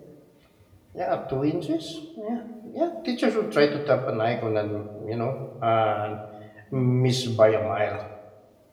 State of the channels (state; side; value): identical; both; correlation 1.00